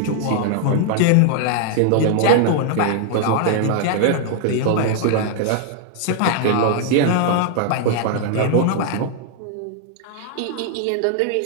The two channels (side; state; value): both; different; correlation -0.01